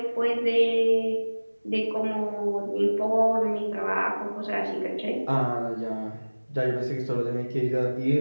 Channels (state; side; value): inverted; both; correlation -1.00